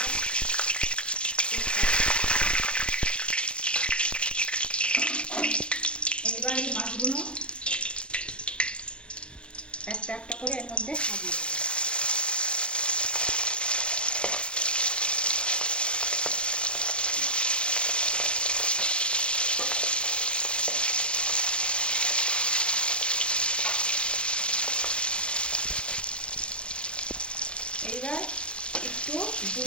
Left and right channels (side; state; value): right; late; 0.058 ms